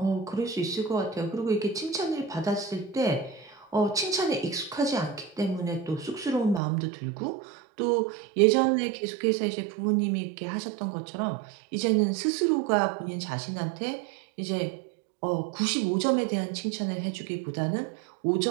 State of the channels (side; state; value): left; drops out; at 6.6 s